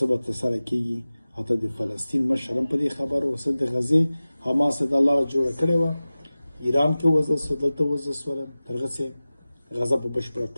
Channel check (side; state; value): both; inverted; correlation -0.97